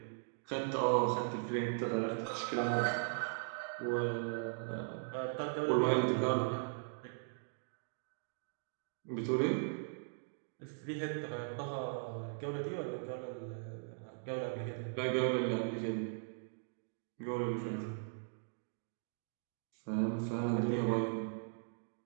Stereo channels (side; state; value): left; silent; digital silence